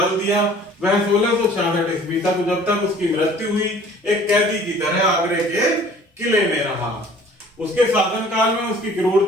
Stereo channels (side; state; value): both; normal; correlation 0.51